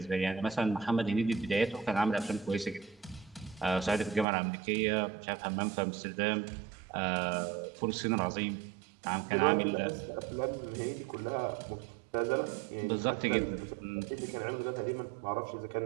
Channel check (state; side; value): drops out; left; at 4.2 s